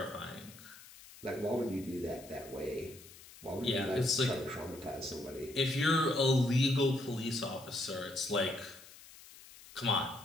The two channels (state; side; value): noise; left; hiss, 19 dB below the sound